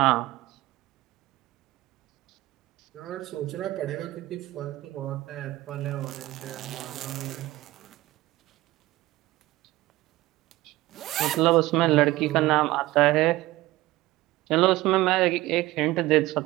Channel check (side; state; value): left; quieter; 17.9 dB